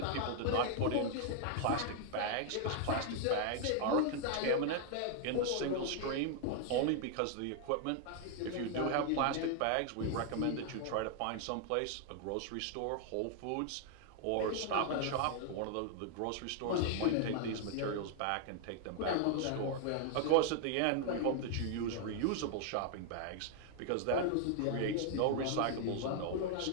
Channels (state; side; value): different; both; correlation 0.00